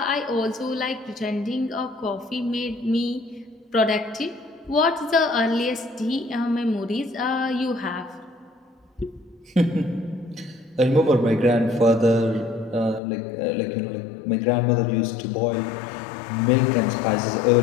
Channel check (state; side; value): drops out; right; at 13.0 s